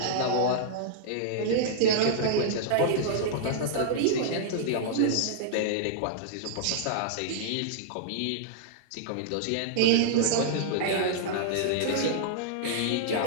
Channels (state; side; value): different; both; correlation -0.02